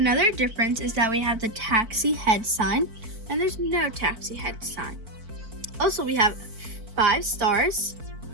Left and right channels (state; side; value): late; left; 4.5 ms